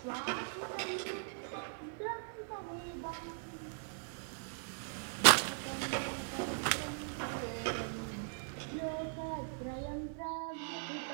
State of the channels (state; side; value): silent; left; digital silence